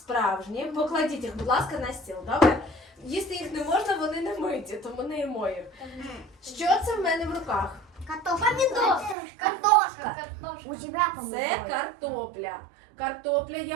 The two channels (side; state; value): left; drops out; at 9.2 s